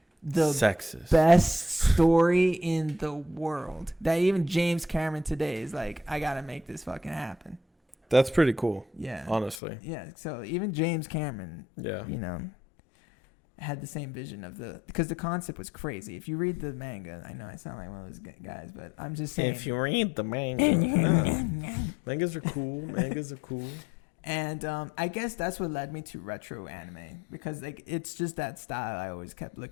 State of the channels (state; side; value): drops out; right; at 9.6 s